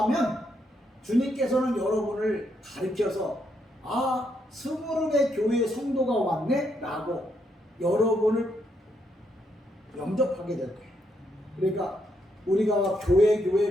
하면 주님께서는 여러분을 가르쳐서 스무르네 교회 성도가 왔네 라고 여러분을 영접하게 될 거예요. 그러니까 우리가 교회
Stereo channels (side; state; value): both; normal; correlation 0.77